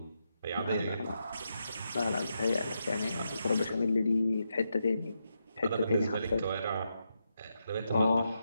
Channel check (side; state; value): both; inverted; correlation -0.84